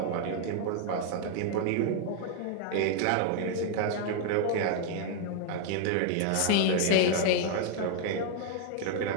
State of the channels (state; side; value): different; both; correlation 0.00